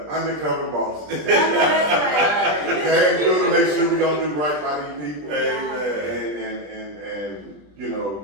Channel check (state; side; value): late; left; 20 ms